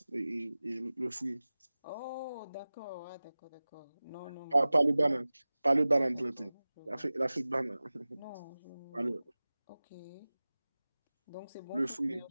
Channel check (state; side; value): inverted; both; correlation -0.98